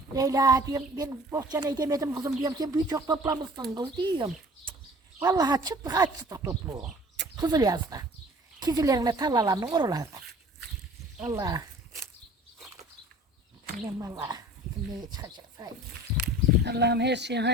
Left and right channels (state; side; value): normal; both; correlation 0.47